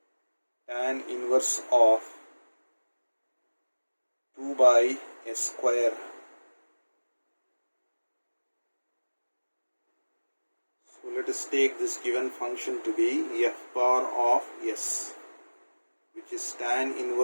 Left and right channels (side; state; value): both; inverted; correlation -1.00